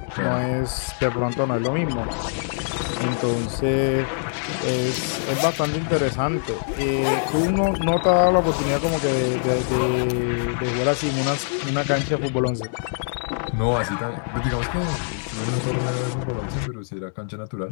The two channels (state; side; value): silent; right; digital silence